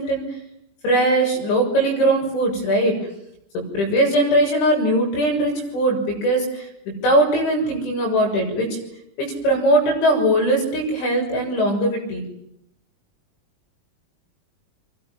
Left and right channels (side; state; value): right; late; 20 ms